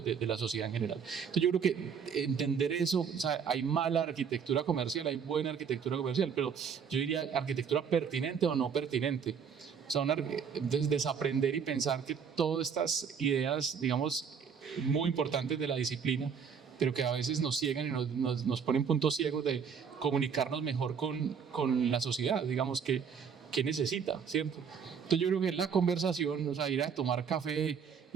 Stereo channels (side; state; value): left; quieter; 6.8 dB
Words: la sociedad en general. Entonces yo creo que entender eso, o sea, hay mala arquitectura comercial, hay buena arquitectura comercial, pero yo diría arquitectura pertinente o no pertinente. O sea, desaprender y pensar que todas estas ideas, digamos, muy importantes de la disciplina, pero que a veces nos ciegan y nos ponen puntos ciegos de comunicarnos mejor con la sociedad, digamos, que necesita, ¿cierto? Entonces yo creo que la conversación, o sea, ir a tomar café,